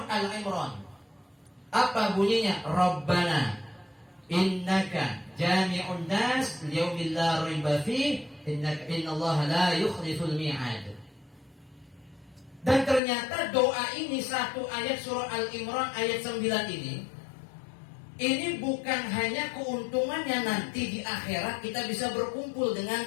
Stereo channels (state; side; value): drops out; right; at 13.0 s